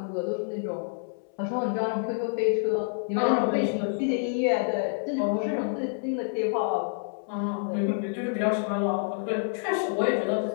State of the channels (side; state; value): right; silent; 59 dB below the other